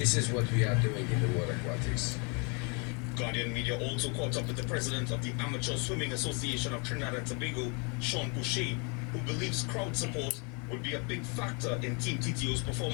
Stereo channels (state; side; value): quieter; right; 34.4 dB